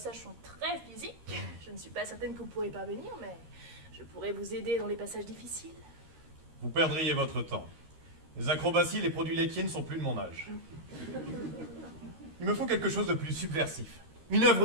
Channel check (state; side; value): late; left; 13 ms